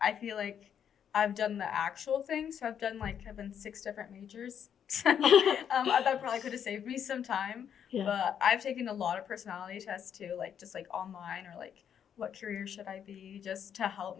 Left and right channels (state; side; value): quieter; right; 8.5 dB